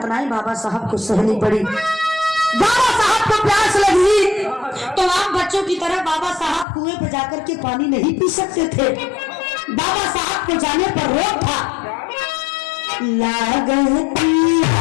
बाबा साहब को सहनी पड़ी। बाबा साहब को प्यास लगी तो आम बच्चों की तरह बाबा साहब कुएं पे जाकर के पानी नहीं पी सकते थे, बाबा साहब के जाने पर रोक था।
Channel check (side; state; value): right; drops out; at 6.7 s